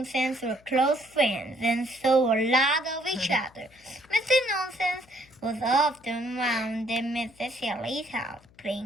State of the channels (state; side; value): noise; left; hum, 28 dB below the sound